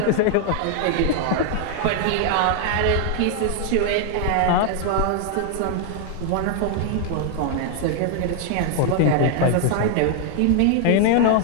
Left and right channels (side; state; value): both; different; correlation 0.00